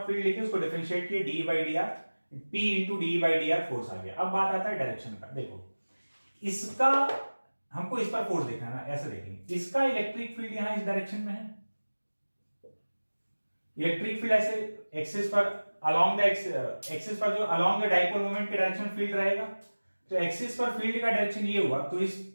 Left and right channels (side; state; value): both; inverted; correlation -1.00